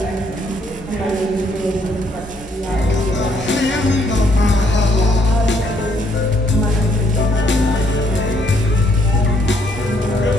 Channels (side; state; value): both; normal; correlation 0.69